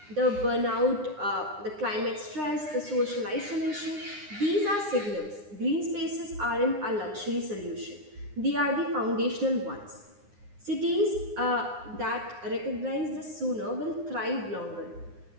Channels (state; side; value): late; left; 9.8 ms